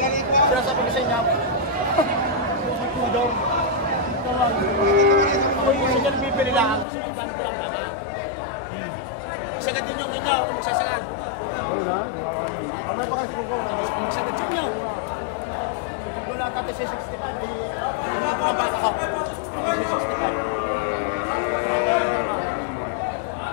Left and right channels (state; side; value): drops out; right; at 6.9 s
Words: sinasabi ko sa inyo. Daw. Ako yung sige bibili lang, gusto kong dami ko lang baka. Sagad din yung inyo, kung magsasagad. Wala, Gusto kong magsagad sa inyo. Wala tatay si 65, hindi ko na baka ako. Si 65.